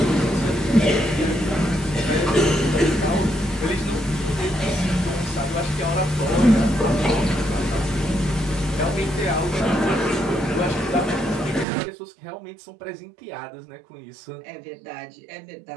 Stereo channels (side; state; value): left; drops out; at 11.7 s